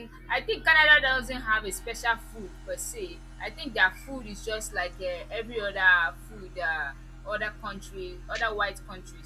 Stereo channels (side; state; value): both; identical; correlation 1.00